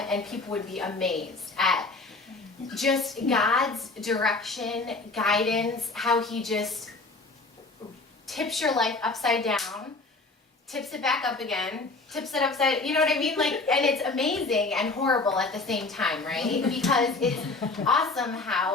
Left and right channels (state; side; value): quieter; right; 3.5 dB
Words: people would be amazed at just God's direction, guidance, how he just tips your life upside down, tips it back up again, tips it upside, you know what I mean? Like, and it's amazing and horrible at the same time, right? Because it's awesome